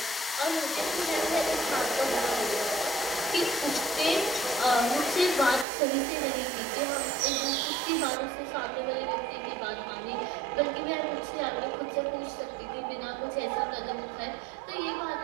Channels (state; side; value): drops out; left; at 5.7 s